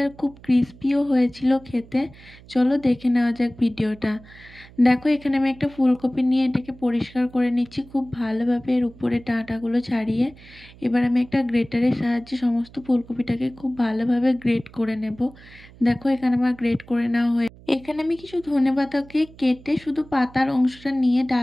আর খুব ক্রিস্পিও হয়েছিল খেতে। চলো দেখে নেওয়া যাক ভিডিওটা। দেখো এখানে আমি একটা ফুলকপি নিয়ে এটাকে পরিষ্কার করে নিচ্ছি খুব ভালোভাবে, এর উপরে ডাঁটাগুলো ছাড়িয়ে। এবার আমি একটা গ্রেটারের সাহায্যে সমস্ত ফুলকপিটাকে খুব ভালোভাবে গ্রেট করে নেব। দেখো এখানে আমার গ্রেট করে নেওয়া হয়ে, এখানে আমি কিছু ধনেপাতাকে কেটে শুধু পাতার অংশটা নিয়ে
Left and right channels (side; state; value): right; noise; hum, 22 dB below the sound